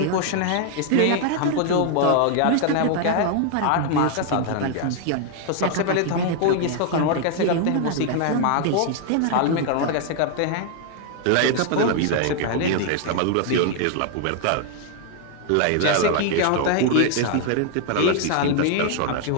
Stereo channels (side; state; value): both; different; correlation 0.00